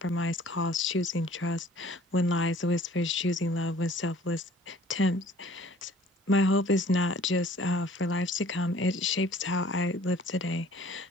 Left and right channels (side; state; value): both; normal; correlation 0.53